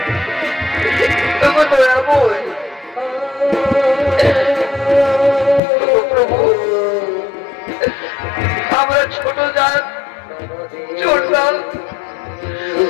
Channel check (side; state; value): right; drops out; at 5.6 s